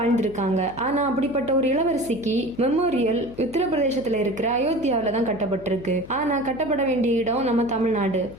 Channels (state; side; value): noise; left; hum, 17 dB below the sound